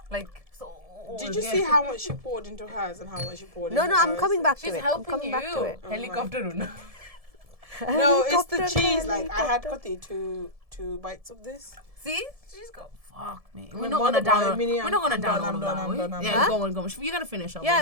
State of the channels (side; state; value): left; late; 1.7 ms